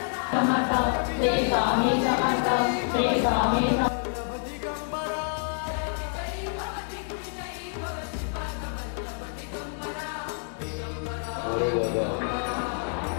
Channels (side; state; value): right; silent; 60 dB below the other